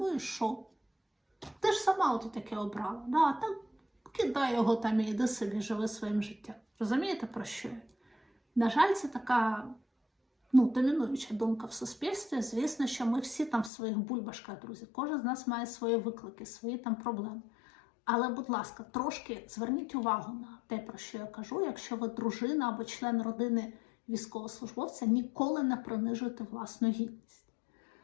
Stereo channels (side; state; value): right; drops out; at 13.7 s